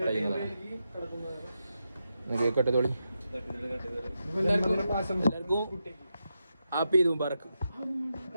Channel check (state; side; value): inverted; both; correlation -0.87